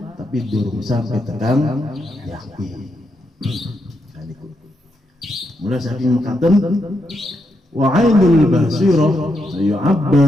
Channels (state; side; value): normal; both; correlation 0.82